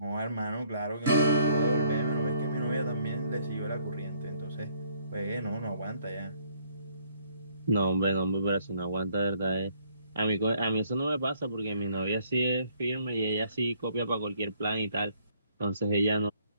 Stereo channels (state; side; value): inverted; both; correlation -0.66